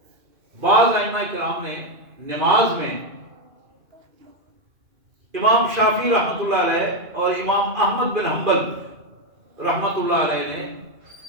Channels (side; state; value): left; late; 2.5 ms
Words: بعض ائمہ کرام نے نماز میں، امام شافعی رحمۃ اللہ علیہ اور امام احمد بن حنبل رحمۃ اللہ علیہ نے